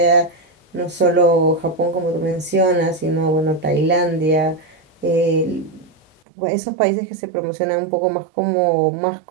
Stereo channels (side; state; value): left; drops out; at 6.2 s